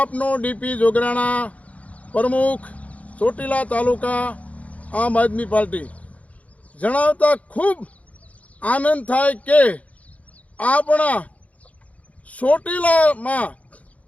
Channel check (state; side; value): late; right; 0.067 ms